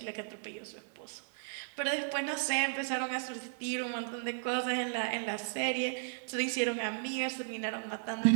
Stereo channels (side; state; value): left; silent; digital silence